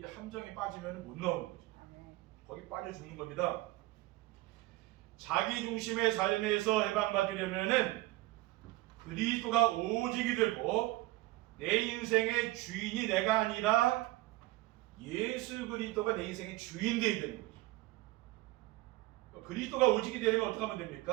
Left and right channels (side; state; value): left; quieter; 18.8 dB